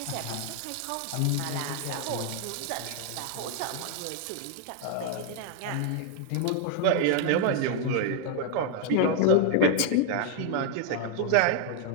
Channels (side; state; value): both; different; correlation 0.00